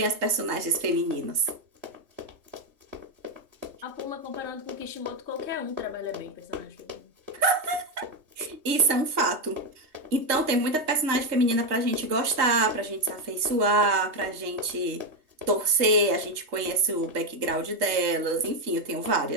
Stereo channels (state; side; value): late; left; 3.2 ms